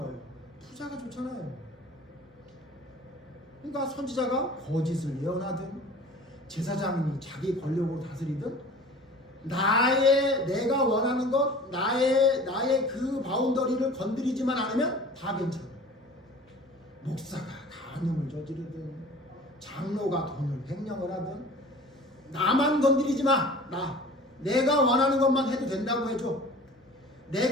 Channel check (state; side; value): normal; both; correlation 0.43